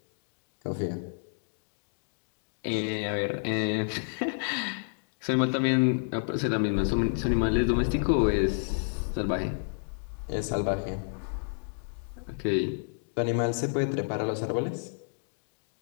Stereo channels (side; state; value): right; silent; digital silence